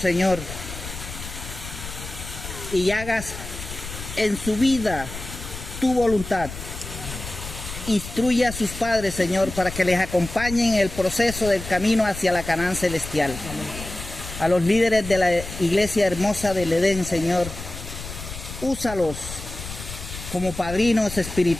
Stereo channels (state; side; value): noise; left; rumble, 10 dB below the sound